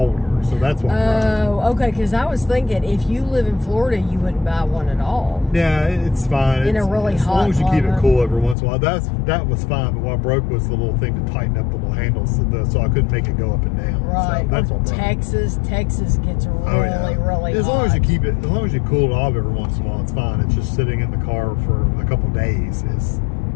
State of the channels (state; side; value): drops out; right; at 8.6 s